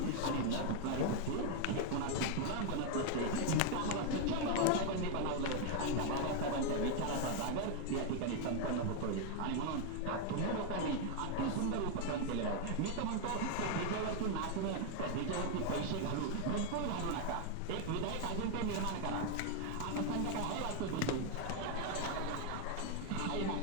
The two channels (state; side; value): different; both; correlation 0.01